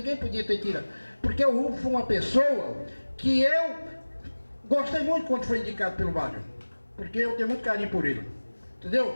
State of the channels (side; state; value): both; inverted; correlation -1.00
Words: podia ter tirado. Porque o Rubens foi uma pessoa que eu gostei muito quando foi indicado pelo Wagner. Porque eu tenho muito carinho por ele.